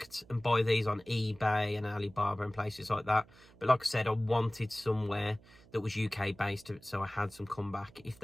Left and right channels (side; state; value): right; noise; hum, 25 dB below the sound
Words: and buy these on eBay and Alibaba and places like that. But like I said, I wanted somewhere that was UK based, so I had some comeback if